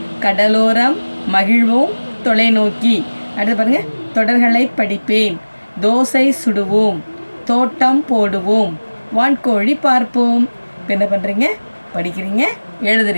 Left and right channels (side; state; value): both; inverted; correlation -1.00